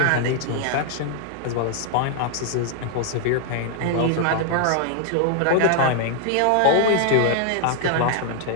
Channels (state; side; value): different; both; correlation 0.00